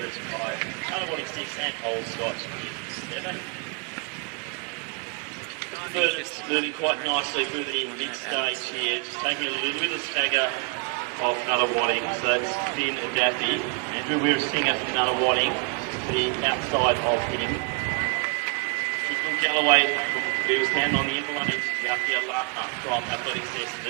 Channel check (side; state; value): left; quieter; 34.7 dB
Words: 5, Nunawading 6, and Old Scotch is 7. Birders moving quite nicely through the mid-stage here, just taking a little bit of stagger off Nunawading, so it's Finn Daffy, and who we're seeing after Nunawading, the outside of him. Kicking Galloway from Williamstown on the inner line is Yakia Laka from Athletics